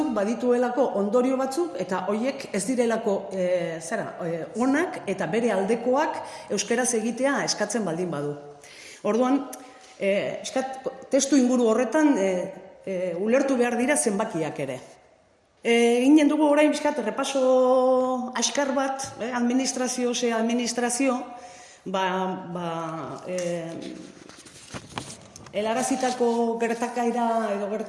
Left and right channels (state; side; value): identical; both; correlation 1.00